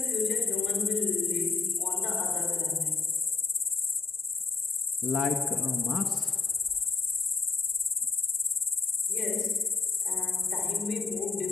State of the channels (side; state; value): right; quieter; 4.4 dB